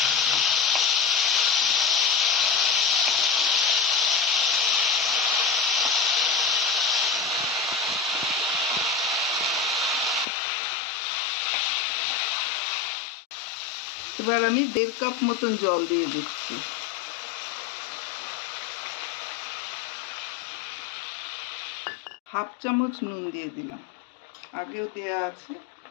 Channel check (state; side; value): drops out; right; at 10.2 s